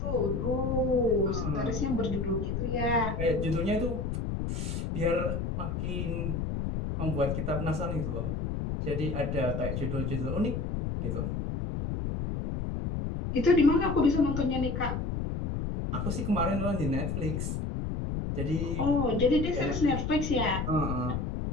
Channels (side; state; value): left; noise; rumble, 2 dB below the sound